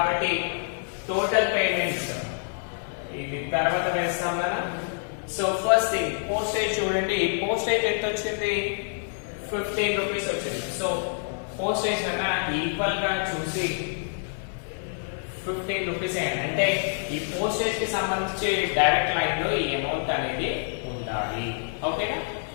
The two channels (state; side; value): silent; right; digital silence